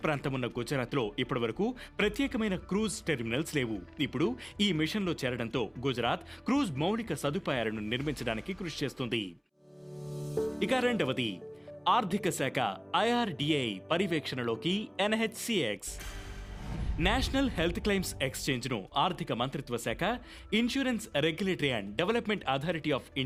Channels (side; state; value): both; identical; correlation 1.00